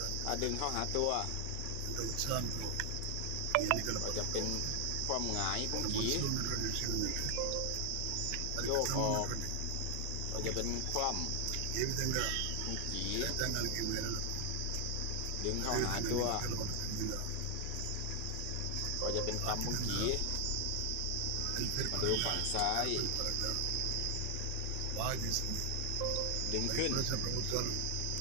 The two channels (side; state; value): both; different; correlation 0.00